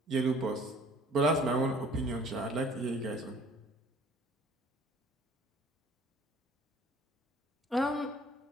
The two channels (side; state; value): both; normal; correlation 0.53